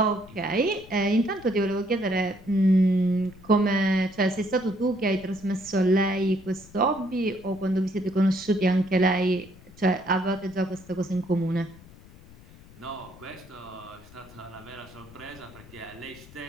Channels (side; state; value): left; noise; rumble, 21 dB below the sound